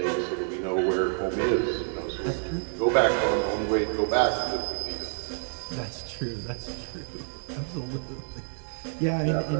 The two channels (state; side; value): silent; left; 59 dB below the other